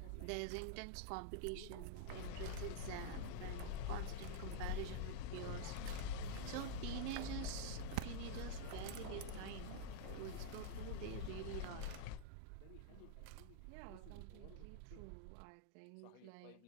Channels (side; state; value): both; different; correlation -0.01